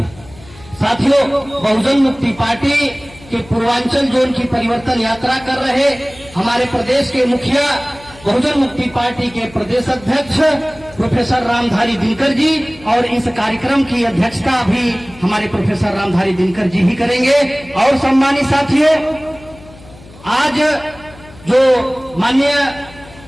हैं। साथियों, बहुजन मुक्ति पार्टी के पूर्वांचल जोन की परिवर्तन यात्रा कर रहे हमारे प्रदेश के मुखिया, बहुजन मुक्ति पार्टी के प्रदेश अध्यक्ष प्रोफेसर रामधारी दिनकर जी, और इस कार्यक्रम की अध्यक्षता भी हमारे प्रोफेसर रामधारी दिनकर जी ही करेंगे। और सम्मानित साथियों, आज जो माननीय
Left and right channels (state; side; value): noise; left; hum, 21 dB below the sound